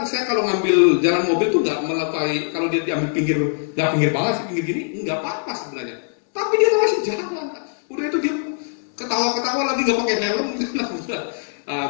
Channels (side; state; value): right; silent; 65 dB below the other